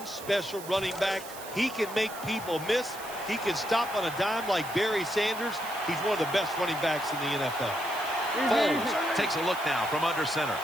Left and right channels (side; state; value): right; noise; hiss, 14 dB below the sound